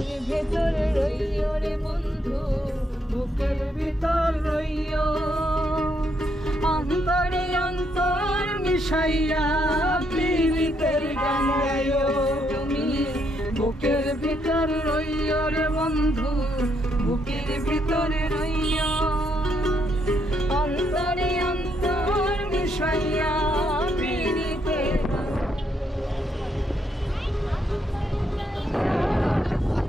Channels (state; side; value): normal; both; correlation 0.76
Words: ভেতরে রইও রে বন্ধু, বুকের ভিতর রইও, অন্তরে অন্তর মিশাইয়া পীড়িতের গান গাইও তুমি। বুকের ভিতর রইও রে বন্ধু, বুকের ভিতরে রইও, অন্তরে অন্তর মিশাইয়া পীড়িতের গান।